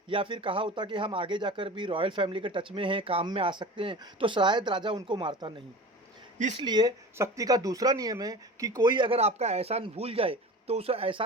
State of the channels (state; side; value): normal; both; correlation 0.36